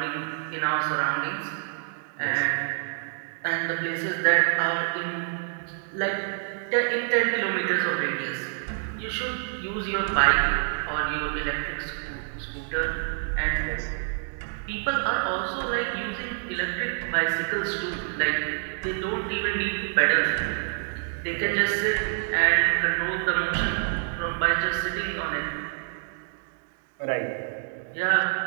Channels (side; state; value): left; silent; digital silence